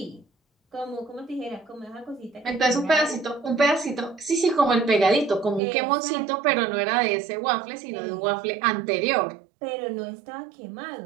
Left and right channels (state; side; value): drops out; left; at 5.6 s